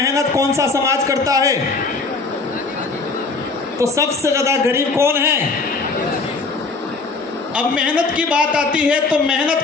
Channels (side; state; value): right; quieter; 4.0 dB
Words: कौन सा समाज करता है? तो सबसे ज्यादा गरीब कौन है? अब मेहनत की बात आती है तो मेहनत